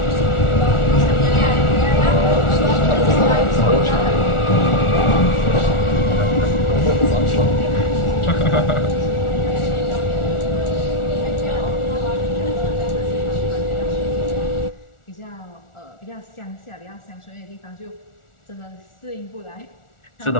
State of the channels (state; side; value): late; right; 1.4 ms